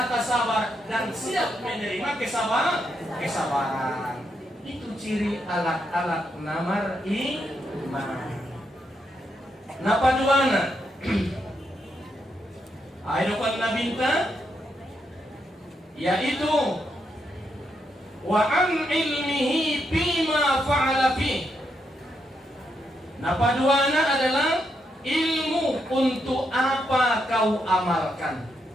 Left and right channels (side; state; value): both; normal; correlation 0.80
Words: sabar, dan siap menerima kesabaran. Itu ciri alat-alat nama iman. Napa duana? Ayo kan nabinta, yaitu wa an ilmihi bima fa'ala fi. Napa duana adalah ilmu untuk apa kau amalkan.